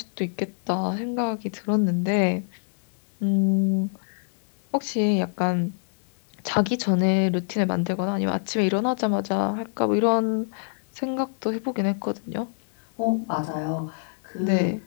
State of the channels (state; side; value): silent; right; digital silence